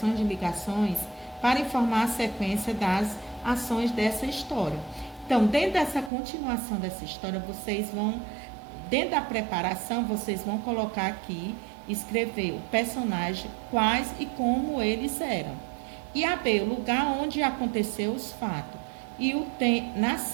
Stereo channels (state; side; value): drops out; left; at 6.1 s